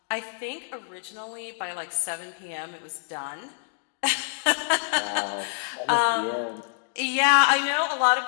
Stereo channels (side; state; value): right; silent; digital silence